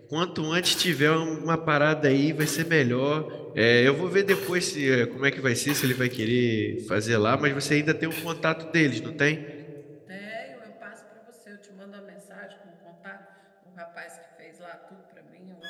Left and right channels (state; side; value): identical; both; correlation 1.00